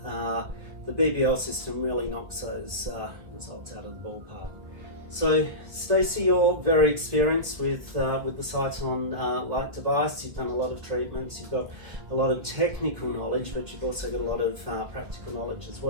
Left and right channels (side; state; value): left; late; 1.4 ms